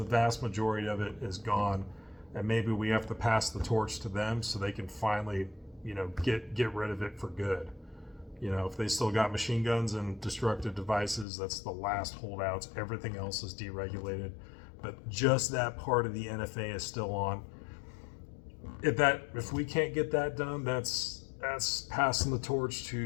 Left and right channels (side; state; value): right; drops out; at 11.2 s